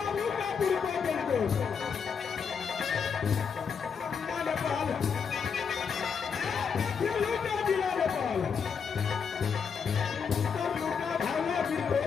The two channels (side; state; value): right; quieter; 6.3 dB